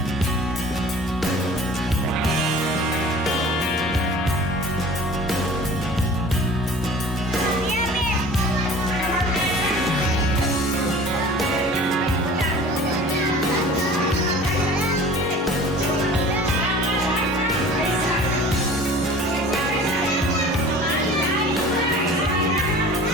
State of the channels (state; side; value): normal; both; correlation 0.44